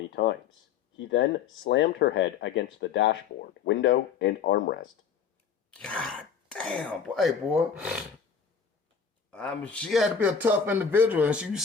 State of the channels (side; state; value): right; quieter; 6.7 dB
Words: times. He then slammed her head against the dashboard, window, and armrest. God damn, boy. Hey, boy. She had to be a tough individual, and you